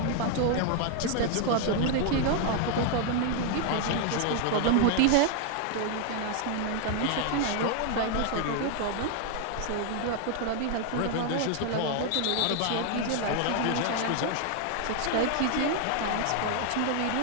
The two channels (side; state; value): both; different; correlation 0.00